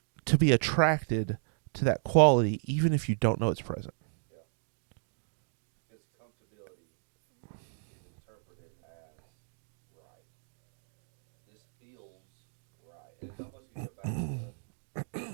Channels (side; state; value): left; silent; digital silence